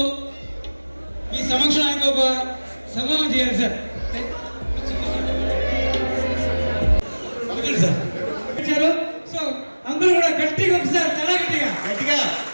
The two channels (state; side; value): inverted; both; correlation -1.00